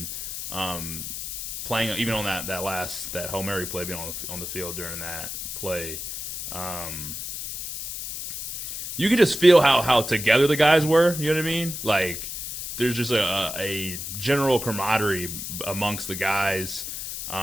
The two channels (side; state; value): left; noise; hiss, 6 dB below the sound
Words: playing even on that Hail Mary play, being on the field during that play, you could just feel how together the guys were. You know what I mean? Like there's just a general camaraderie amongst the guys,